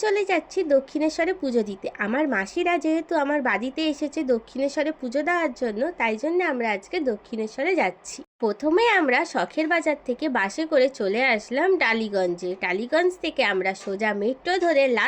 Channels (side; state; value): both; identical; correlation 1.00